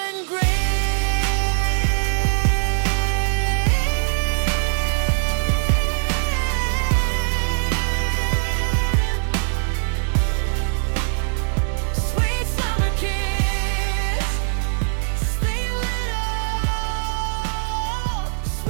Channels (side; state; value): left; silent; digital silence